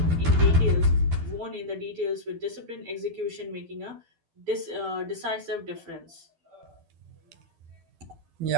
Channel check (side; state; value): left; late; 12 ms